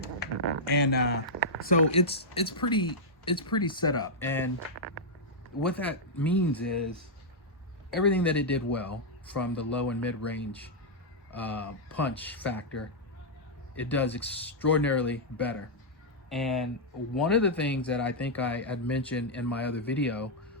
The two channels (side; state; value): both; normal; correlation -0.07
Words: and so it's pretty set up. And what that means is everything that it did well, from the low and mid range punch factor, it does extraordinarily better. And one of the things that I think I had mentioned in my other video